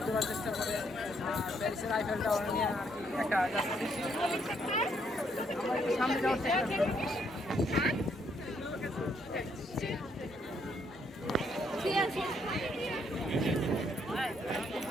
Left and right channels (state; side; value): normal; both; correlation 0.72